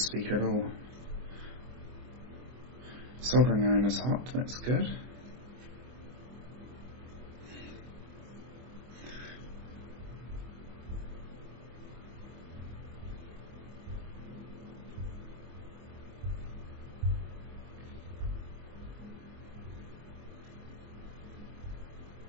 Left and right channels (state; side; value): late; left; 24 ms